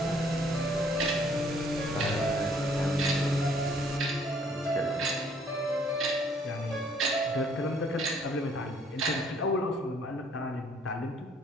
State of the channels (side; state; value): both; normal; correlation 0.62